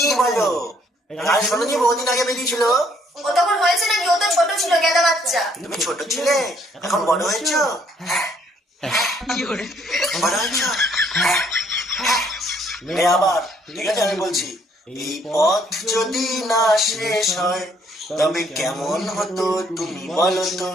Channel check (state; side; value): normal; both; correlation 0.66